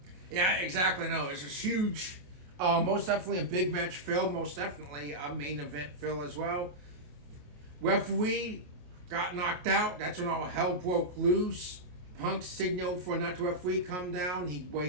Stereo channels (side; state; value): left; late; 28 ms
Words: Yeah, exactly. No, it's a huge, most definitely a big match fill. Most definitely a main event fill as well. Referee got knocked out. That's when all hell broke loose. Punk signaled for another referee come down. What he